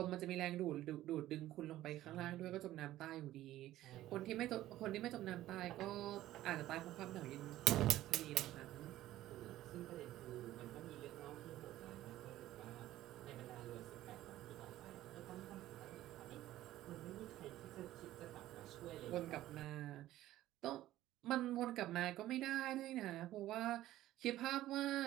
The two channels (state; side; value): quieter; left; 14.6 dB